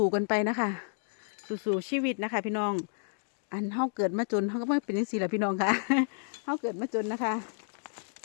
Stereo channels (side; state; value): right; silent; digital silence